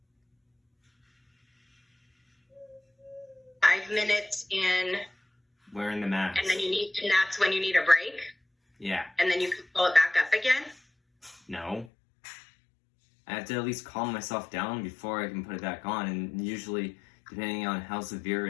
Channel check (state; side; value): drops out; right; at 11.9 s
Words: In wearing the mask. And that's when you need a break? Yeah. And then you can pull it back up again? No. I have to at least calm myself down before I can put it back on, and usually, depending on how severe